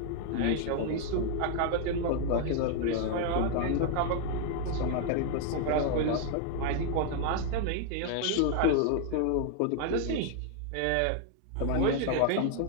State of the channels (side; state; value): both; different; correlation 0.00